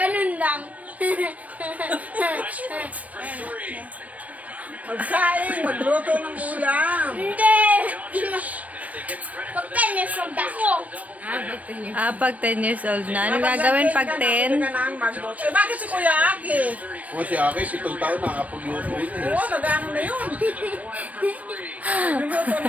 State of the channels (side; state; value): left; late; 0.069 ms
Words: lang. Magsaing, magluto ng ulam. Hindi. Pagkanis ang dako. Pag 10 years old na. Anong gagawin pag 10? Magluto. Eh, bakit si Kuya Aki? O si Aki, 7 taon nakakapagluto yun eh. Oo, nag-ano na yun. Luluto